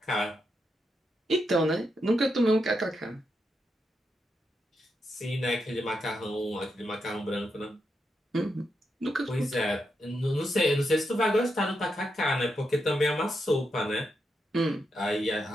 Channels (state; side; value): normal; both; correlation 0.84